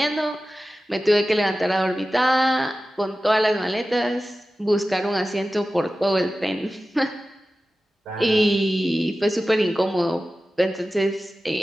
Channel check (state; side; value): normal; both; correlation 0.95